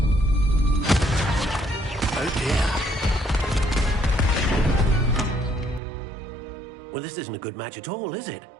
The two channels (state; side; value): drops out; left; at 5.8 s